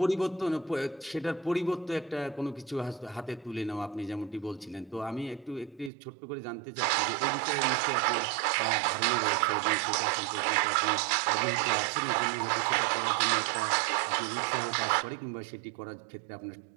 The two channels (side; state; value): left; drops out; at 5.9 s